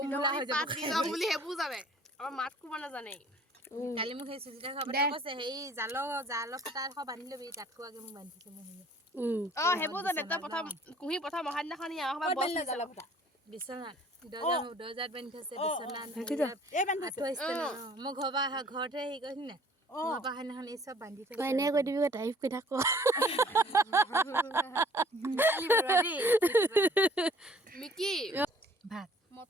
পাত দি যাম বুলি সেইবোৰ জানে আমাৰ মাত কোবা নাজানে কালি মোক সেই সুজিতা খবৰে কৈছে হেৰি জাল ফটা এখন বান্ধি ল'বি তাতকো আগে মোক বান্ধিছে মই সেইবোৰ জানে তই প্ৰথম কুঁহি প্ৰথম অহা দিনাখন বিচনাত দৰ্জাত বান্ধি থৈছে বিচনাত মই ঘৰতে হেৰি কৰিছি নাই ঘৰৰ পৰা সেইদিনাখন এই চব বান্ধি থৈছে এনে কৈ দিবি তাৰিফ কৰি থাক মিকি ভাত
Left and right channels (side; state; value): both; normal; correlation 0.55